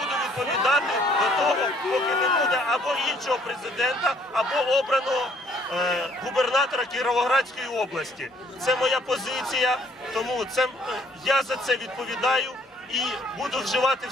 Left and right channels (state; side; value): normal; both; correlation 0.62